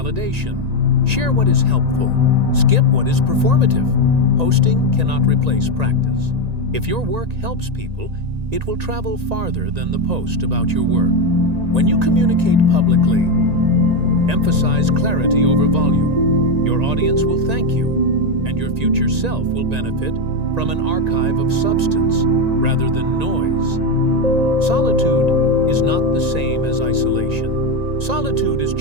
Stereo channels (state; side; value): late; left; 1.9 ms